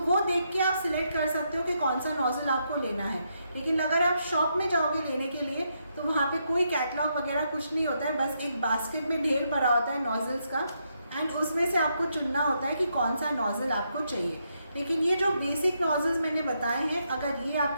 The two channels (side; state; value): both; inverted; correlation -0.79